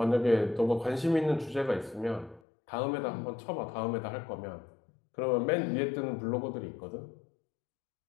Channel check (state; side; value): drops out; right; at 2.4 s